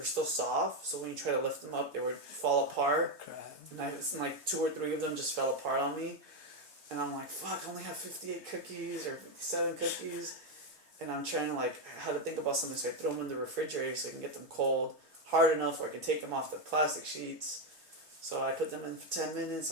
still soft, so when you try to lift them up, they would fall apart. Crap. And like 2 or 3 of them just fell apart on me. And I'm like, fuck, I only have 58 cookies or 57 cookies. And I'm trying to like, how to think about something, so I throw them in the refrigerator so I can get them cold, hard enough where I can take them off the plastic sheets. So I put them in for 10 minutes.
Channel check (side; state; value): left; late; 3.3 ms